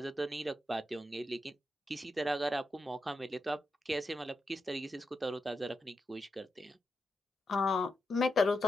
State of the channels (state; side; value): normal; both; correlation 0.87